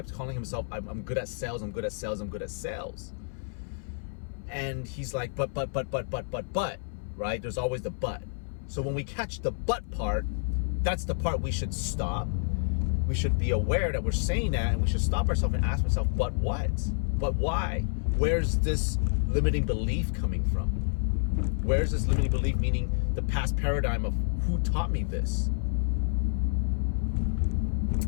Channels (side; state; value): right; silent; 57 dB below the other